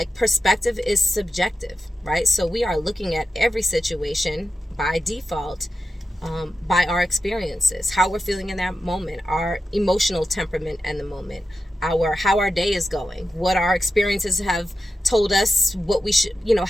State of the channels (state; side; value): normal; both; correlation 0.90